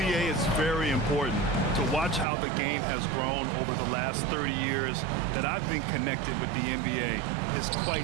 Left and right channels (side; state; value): left; drops out; at 2.2 s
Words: is very important to watch how the game has grown over the last 30 years that I've been connected with the NBA is